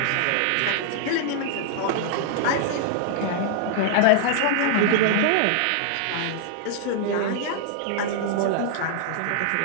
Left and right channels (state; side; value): different; both; correlation -0.01